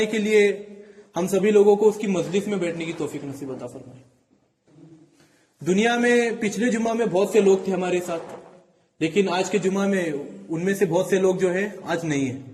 के लिए हम सभी लोगों को उसकी मजलिस में बैठने की तौफीक नसीब अता फरमाए। दुनिया में पिछले जुमा में बहुत से लोग थे हमारे साथ, लेकिन आज के जुमा में उनमें से बहुत से लोग जो है आज नहीं है।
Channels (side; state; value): both; identical; correlation 1.00